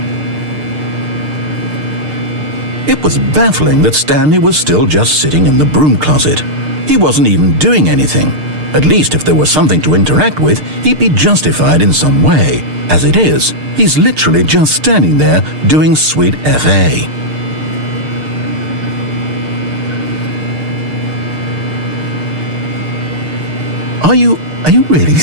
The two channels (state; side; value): late; left; 6.6 ms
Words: It was baffling that Stanley was still just sitting in the broom closet. He wasn't even doing anything. At least if there was something to interact with, he'd be justified in some way. As it is, he's literally just standing there doing sweet FA. Are you really